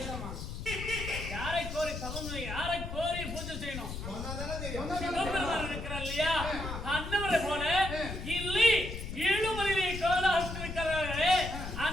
யாரை கோரி தவம், யாரை கோரி பூஜை செய்யணும்? சிவபெருமான் இருக்கிறார் இல்லையா? அன்னவரை போல இல்லை ஏழுமலையை கோலாசிருக்கிறார்களே,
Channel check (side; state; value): left; noise; rumble, 7 dB below the sound